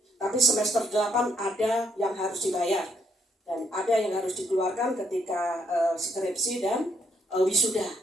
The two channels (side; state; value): both; normal; correlation 0.72